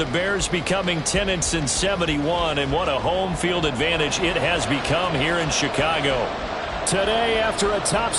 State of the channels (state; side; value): identical; both; correlation 1.00